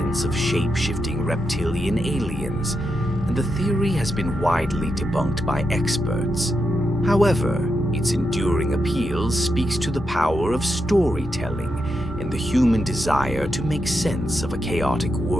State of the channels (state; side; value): normal; both; correlation 0.85